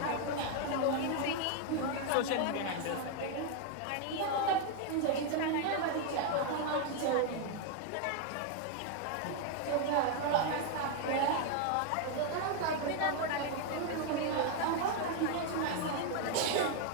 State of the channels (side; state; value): both; different; correlation 0.00